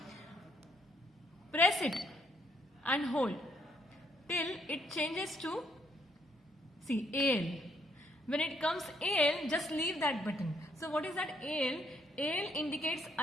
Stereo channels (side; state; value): both; normal; correlation 0.70